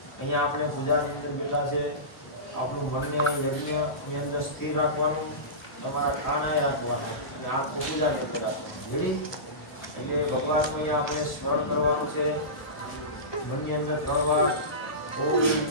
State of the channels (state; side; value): late; right; 1.3 ms